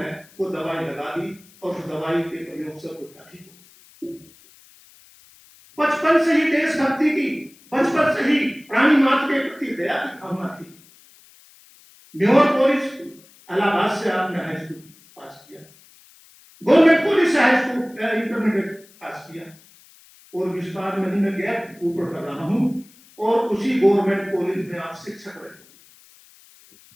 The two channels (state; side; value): noise; left; hiss, 26 dB below the sound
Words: वो दवाई लगा दी और उस दवाई के प्रयोग से कुत्ता ठीक हो। बचपन से ही देशभक्ति की, बचपन से ही प्राणी मात्र के प्रति दया की भावना थी। म्योर कॉलेज इलाहाबाद से आपने हाई स्कूल पास किया, गवर्नमेंट कॉलेज से हाई स्कूल इंटरमीडिएट पास किया और विस्तार में ही मैं गैप ऊपर कर रहा हूं और उसी गवर्नमेंट कॉलेज में आप शिक्षक रहे।